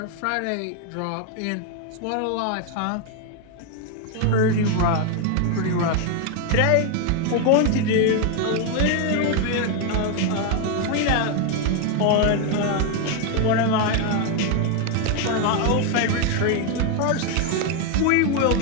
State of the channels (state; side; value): different; both; correlation 0.01